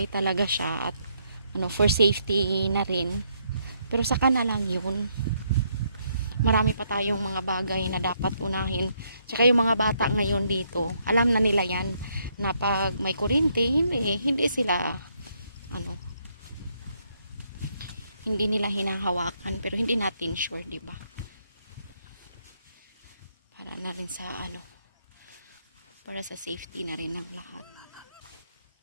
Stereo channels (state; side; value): inverted; both; correlation -0.73